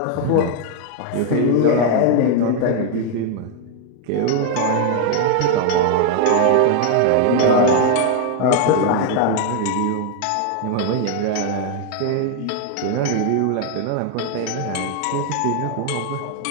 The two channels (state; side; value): different; both; correlation 0.00